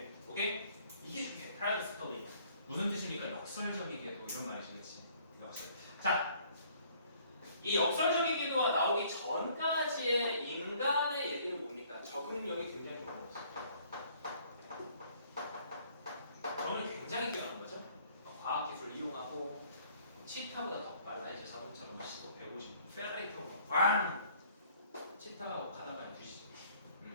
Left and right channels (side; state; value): both; inverted; correlation -0.59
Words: 오케이? 이게 중요해. paradoxically. 무슨 뜻입니까? 역설적이게도 이런 말이시겠지. 자, 이 역설적이게도가 나오기 전까지의 인간의 얘기는 뭡니까? 적응력이 굉장히 좋은 거지. 적응력이 굉장히 뛰어난 거죠. 과학기술을 이용하고 치타보다 더 빨라. 이제 자동차로 시속 150, 페라리 타고 꽝! 치타가 가다가 뒤지죠.